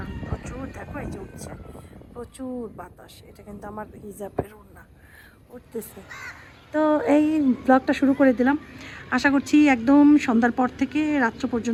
প্রচুর, দেখো এই যে উঠছে প্রচুর বাতাস। এটা কিন্তু আমার হিজাবের ওড়না উঠতেছে। তো এই ব্লগটা শুরু করে দিলাম। আশা করছি একদম সন্ধ্যার পর থেকে রাত্র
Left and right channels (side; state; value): both; identical; correlation 1.00